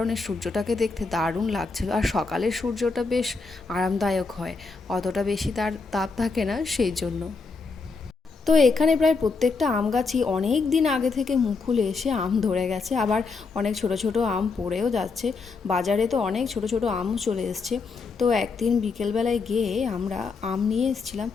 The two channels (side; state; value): right; quieter; 4.4 dB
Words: সূর্যটাকে দেখতে দারুণ লাগছিল। আর সকালের সূর্যটা বেশ আরামদায়ক হয়, অতটা বেশি তার তাপ থাকে না সেই জন্য। তো এখানে প্রায় প্রত্যেকটা আম গাছই অনেক দিন আগে থেকে মুকুল এসে আম ধরে গেছে, আবার অনেক ছোট ছোট আম পড়েও যাচ্ছে। বাজারে তো অনেক ছোট ছোট আমও চলে এসছে। তো একদিন বিকেলবেলায় গিয়ে আমরা আম নিয়ে এসেছিলাম,